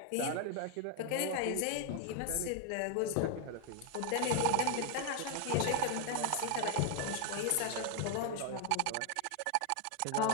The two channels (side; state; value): both; different; correlation 0.01